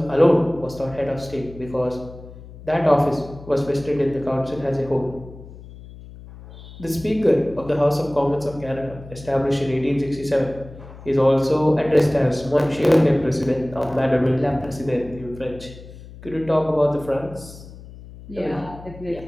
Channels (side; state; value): left; noise; hum, 17 dB below the sound